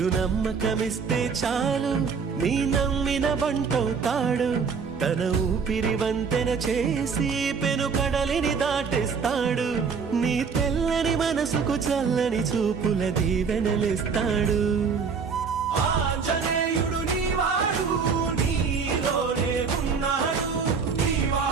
చాలు నీ నమ్మిన బంటవుతాడు, తన ఊపిరి వంతెన చేసి పెను కడలిని దాటిస్తాడు. నీ తెల్లని మనసుకు చల్లని చూపుల దీవెనలిస్తాడు.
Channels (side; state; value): left; quieter; 5.7 dB